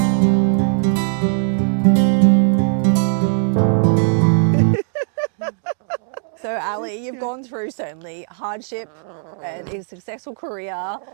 So Ally, you've gone through certainly hardship and a successful career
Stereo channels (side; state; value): left; silent; digital silence